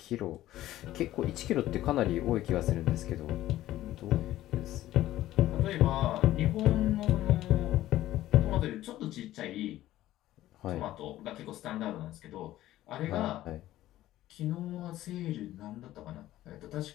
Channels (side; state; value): right; quieter; 14.6 dB